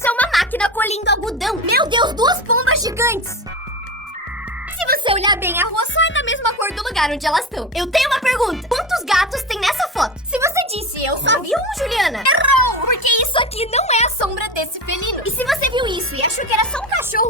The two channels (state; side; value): normal; both; correlation 0.24